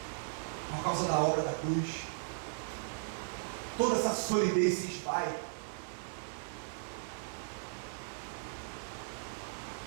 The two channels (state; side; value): silent; left; digital silence